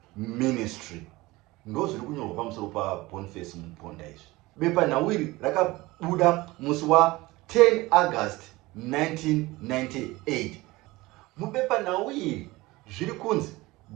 ministry. Ndo zviri kunyorwa pamusoro paBoniface Muponda izvi. Bepanhau iri rakabuda musi wa 10 August 1998. Mubepanhau iri zviri kunzi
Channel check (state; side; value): quieter; left; 20.4 dB